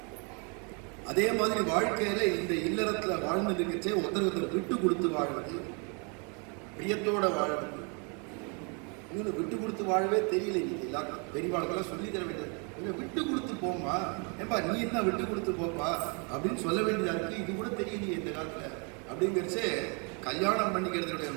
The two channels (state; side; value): quieter; left; 35.3 dB